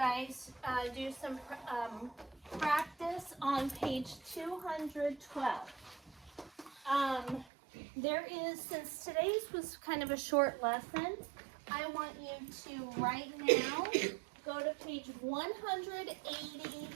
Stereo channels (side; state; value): left; drops out; at 7.5 s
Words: do some practice on page 212. There is, since today's was kind of a short lesson, I want you to right now go to page